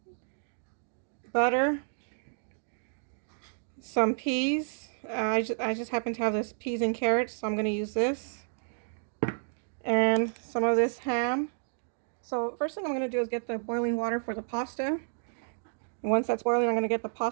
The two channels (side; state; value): left; silent; digital silence